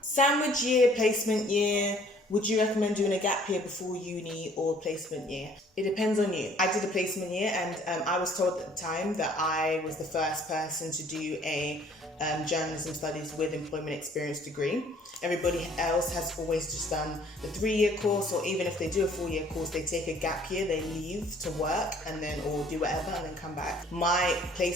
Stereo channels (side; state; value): both; normal; correlation 0.57